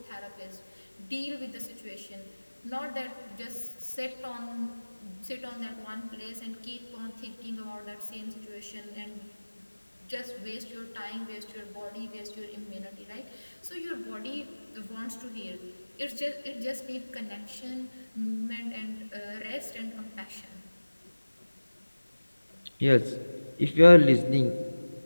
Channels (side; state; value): both; inverted; correlation -1.00